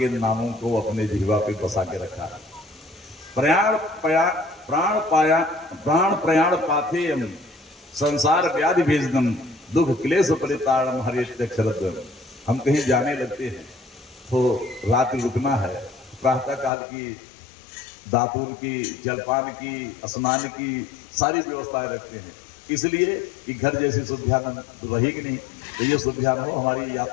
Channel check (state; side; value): drops out; right; at 16.7 s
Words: नामों को अपने जिह्वा पे बसा के रखा। प्राण प्रयाण पाथेयम संसार व्याधि भेजनम दुख क्लेश परिताड़म हरित्यक्षरद्वयम्। हम कहीं जाने लगते हैं तो रात रुकना है, प्रातः काल की दातुर की, जलपान की, स्नान की सारी व्यवस्थाएं रखते हैं, इसलिए कि घर जैसी सुविधा रहेगी नहीं, तो ये सुविधा न हो, हमारी